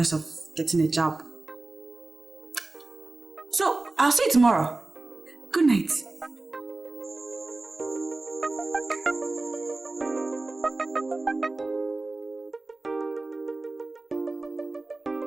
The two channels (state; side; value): quieter; left; 3.1 dB